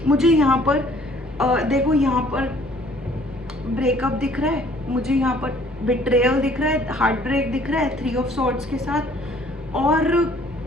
मुझे यहाँ पर देखो यहाँ पर ब्रेकअप दिख रहा है, मुझे यहाँ पर बिट्रेयल दिख रहा है, हार्ट ब्रेक दिख रहा है 3 ऑफ सॉर्ड्स के साथ, और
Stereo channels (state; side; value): normal; both; correlation 0.58